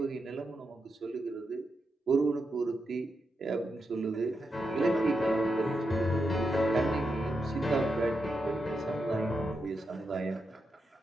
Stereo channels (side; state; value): both; normal; correlation 0.85